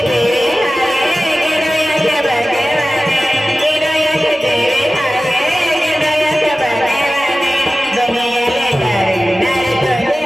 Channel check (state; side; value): normal; both; correlation 0.95